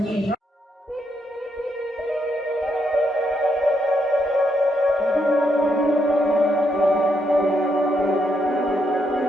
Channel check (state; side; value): normal; both; correlation 0.78